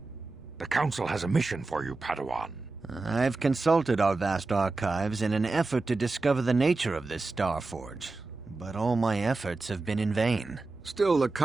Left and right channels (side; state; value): left; quieter; 3.5 dB